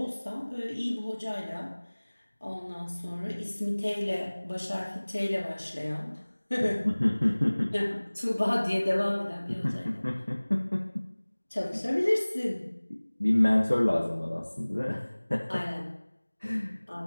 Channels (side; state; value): both; inverted; correlation -1.00